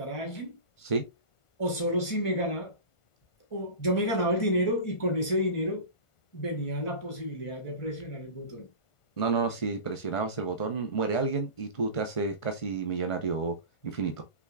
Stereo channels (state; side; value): late; right; 1.5 ms